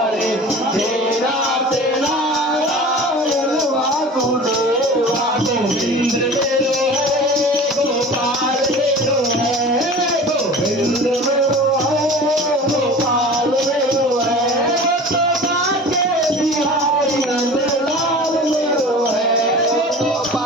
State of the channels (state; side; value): normal; both; correlation 0.39